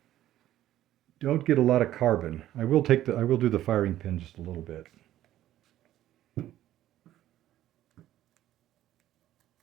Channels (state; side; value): quieter; left; 13.3 dB